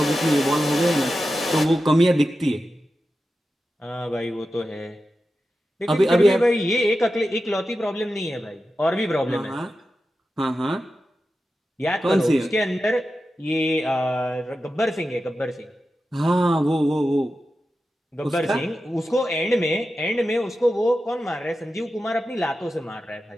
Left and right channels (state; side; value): normal; both; correlation 0.92